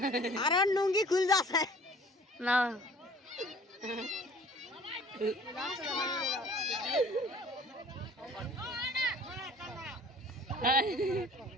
আর নুঙ্গি খুল যাচ্ছে না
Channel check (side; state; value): both; normal; correlation 0.50